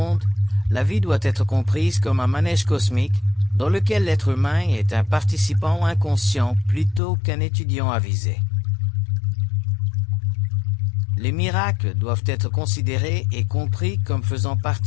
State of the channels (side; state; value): right; drops out; at 7.0 s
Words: la vie doit être comprise comme un manège cosmique dans lequel l'être humain est un participant inconscient plutôt qu'un étudiant avisé. Les miracles doivent être considérés et compris comme faisant